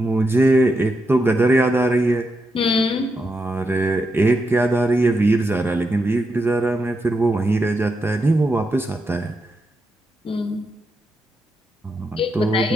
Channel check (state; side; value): normal; both; correlation 0.84